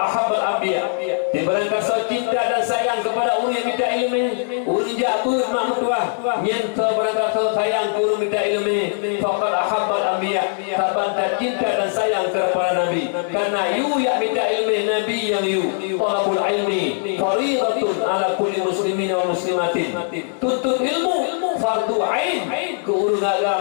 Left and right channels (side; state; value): right; silent; digital silence